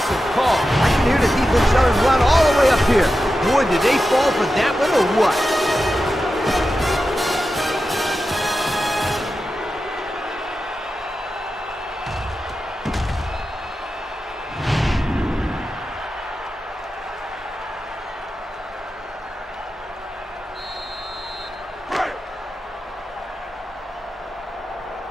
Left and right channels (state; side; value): normal; both; correlation 0.91